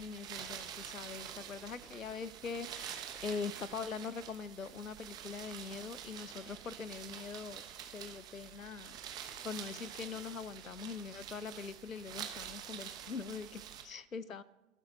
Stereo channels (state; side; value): normal; both; correlation 0.40